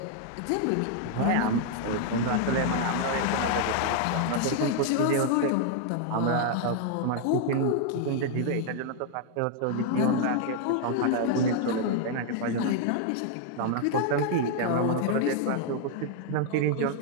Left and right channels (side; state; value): both; different; correlation 0.00